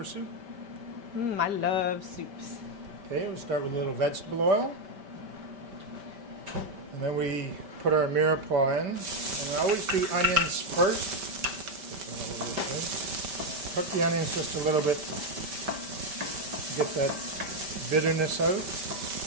soup. I love soups. Okay, we'll start with a little vegetable oil. And then we put our mirepoix in. And I always do onions first. Cook the onions just a little bit to get that bitterness out.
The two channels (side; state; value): left; late; 5.1 ms